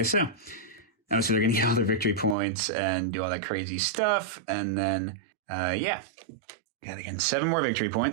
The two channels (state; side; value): drops out; left; at 2.4 s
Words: so. Oh, so they're going to get all their victory points and do all that crazy stuff. And then, yeah, they're getting 7 more victory